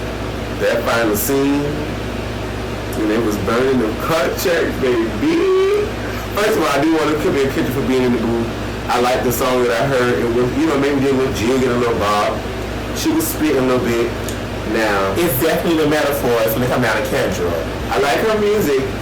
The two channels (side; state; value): both; identical; correlation 1.00